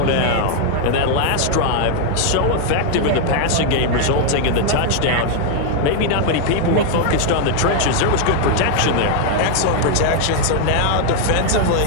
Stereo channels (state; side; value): different; both; correlation 0.00